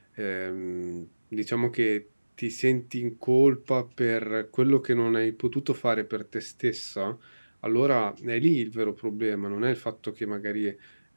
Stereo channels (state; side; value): inverted; both; correlation -1.00